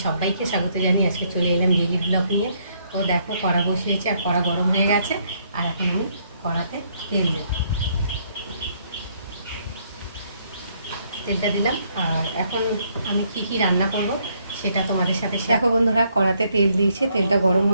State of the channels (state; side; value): inverted; both; correlation -0.70